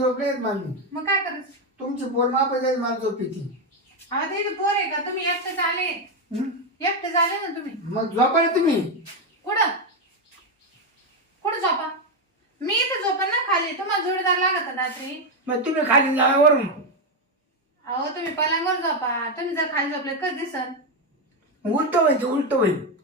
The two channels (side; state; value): both; normal; correlation 0.07